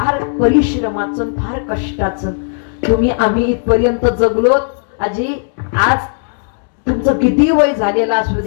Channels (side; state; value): right; silent; digital silence